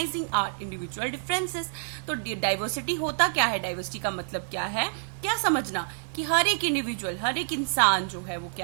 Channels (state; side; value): silent; left; digital silence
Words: our individual differences. तो डाइवर्सिटी होता क्या है? डाइवर्सिटी का मतलब क्या है? क्या समझना कि हर एक इंडिविजुअल, हर एक इंसान जो है वो